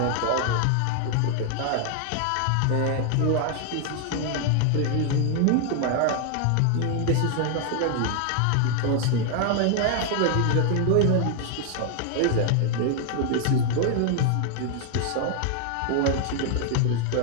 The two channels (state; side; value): different; both; correlation 0.00